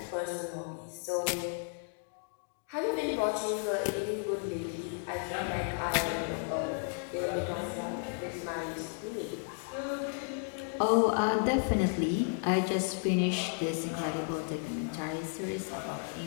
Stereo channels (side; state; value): right; silent; 55 dB below the other